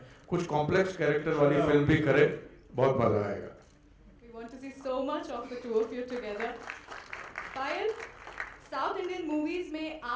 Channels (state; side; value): identical; both; correlation 1.00